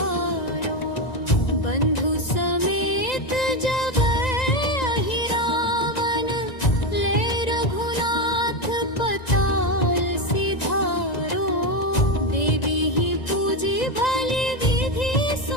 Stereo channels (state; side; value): late; right; 1.9 ms